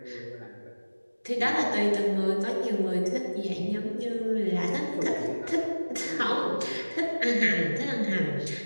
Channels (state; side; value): inverted; both; correlation -1.00